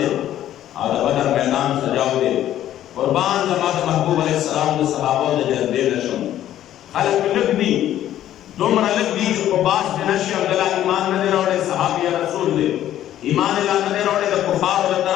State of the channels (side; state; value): right; quieter; 12.1 dB